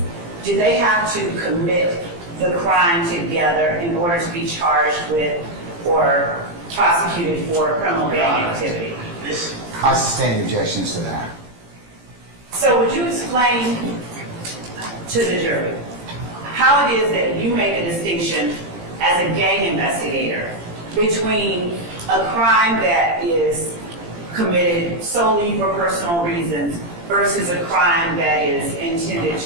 do they have to commit the crime together in order to be charged with or prosecuted for criminal gang activity? I sustain objections to that. So would you explain to the jury how it is that you make a distinction as a gang investigator between a crime that is committed solely for personal reasons versus a crime that is intended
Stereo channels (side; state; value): left; late; 17 ms